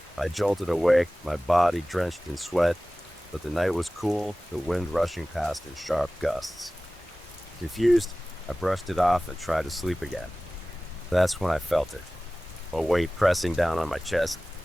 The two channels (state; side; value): normal; both; correlation 0.97